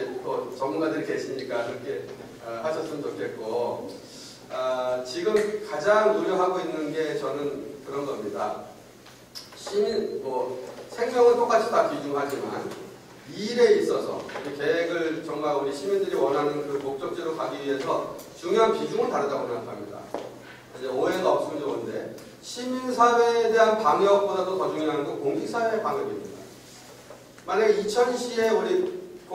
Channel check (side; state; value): both; identical; correlation 1.00